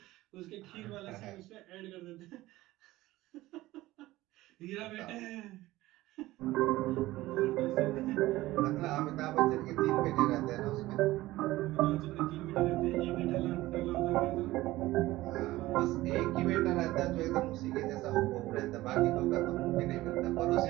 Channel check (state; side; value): quieter; left; 17.5 dB